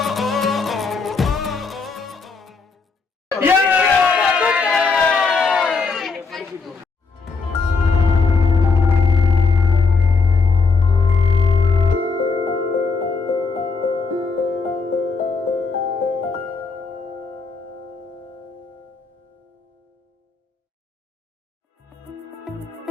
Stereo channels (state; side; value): quieter; right; 4.5 dB